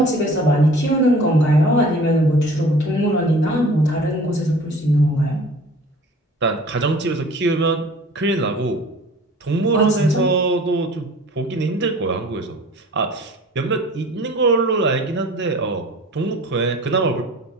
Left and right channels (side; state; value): both; normal; correlation 0.46